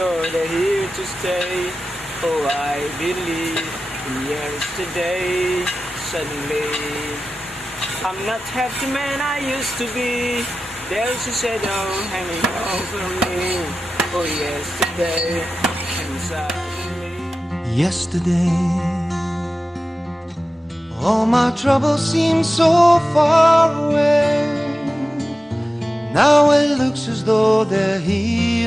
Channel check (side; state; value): both; normal; correlation 0.94